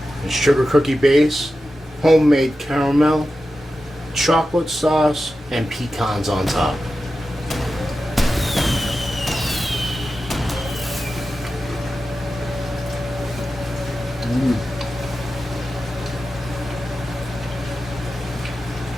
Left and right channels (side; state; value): both; normal; correlation 0.92